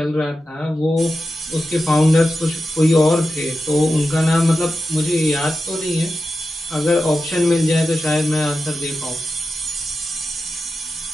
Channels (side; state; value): both; normal; correlation 0.91